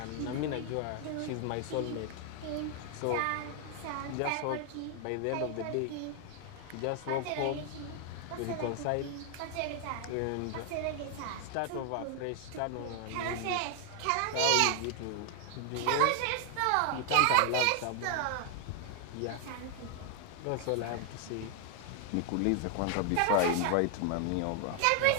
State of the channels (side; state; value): both; different; correlation 0.00